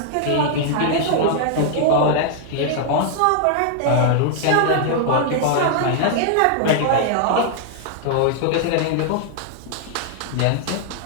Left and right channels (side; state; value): both; different; correlation -0.01